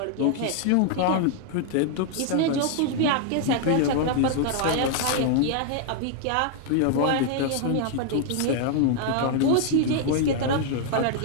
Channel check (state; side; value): different; both; correlation 0.00